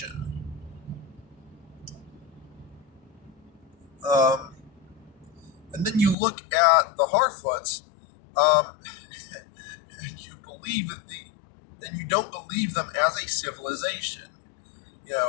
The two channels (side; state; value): right; drops out; at 6.2 s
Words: Um, and then you look at the Harfoots, um, and you believe that and you don't believe them as a civilization. You